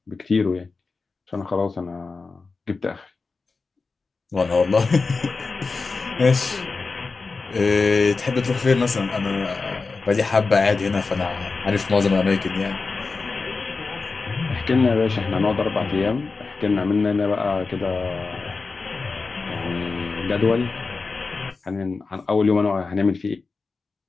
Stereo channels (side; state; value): right; quieter; 4.2 dB